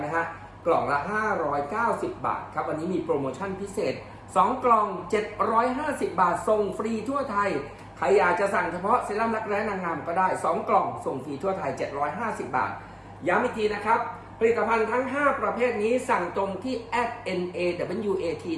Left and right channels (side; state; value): both; identical; correlation 1.00